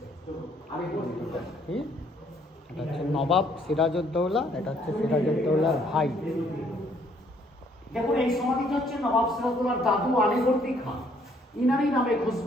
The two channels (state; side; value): normal; both; correlation 0.65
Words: আমি বলি এটা হচ্ছে নবাব সিরাজউদ্দৌলা, এটা হচ্ছে সিরাজউদ্দৌলার ভাই। দেখুন এই সমাধিটা হচ্ছে নবাব সিরাজউদ্দৌলার দাদু আলীবর্দী খান, ইনারই নামে